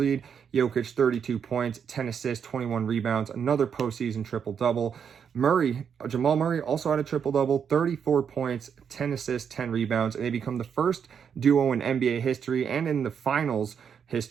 Jokic, 32 points, 10 assists, 21 rebounds, another postseason triple-double. Jamal Murray also had a triple-double, 34 points, 10 assists, 10 rebounds, and they become the first duo in NBA history and in the finals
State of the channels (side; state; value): left; quieter; 7.3 dB